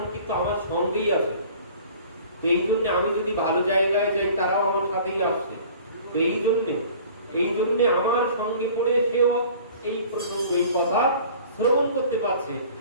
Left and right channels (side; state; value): both; inverted; correlation -0.47